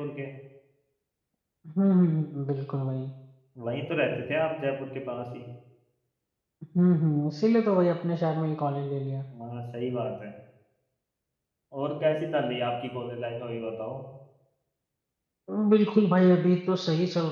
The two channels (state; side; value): identical; both; correlation 1.00